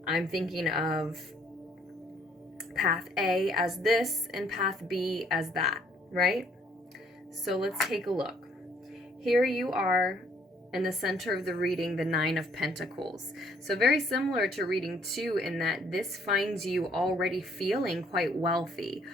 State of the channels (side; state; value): both; normal; correlation 0.64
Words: I'm thinking of path A as this and path B as that, right? So let's take a look. Here you are In the center of the reading, the Nine of Pentacles. So very similar to reading 2 in that this finds you already feeling quite wealthy